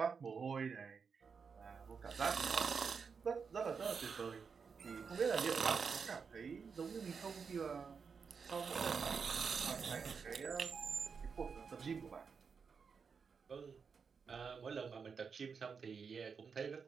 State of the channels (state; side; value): quieter; left; 5.8 dB